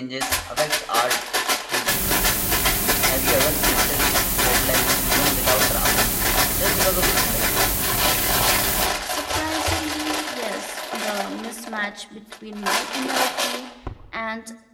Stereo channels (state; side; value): identical; both; correlation 1.00